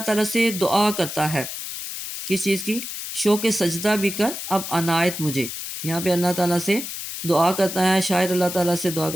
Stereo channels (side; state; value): left; noise; hiss, 7 dB below the sound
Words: تعالیٰ سے دعا کرتا ہے، کس چیز کی؟ شوق سجدہ بھی کر اب عنایت مجھے۔ یہاں پہ اللہ تعالیٰ سے دعا کرتا ہے، شاعر اللہ تعالیٰ سے دعا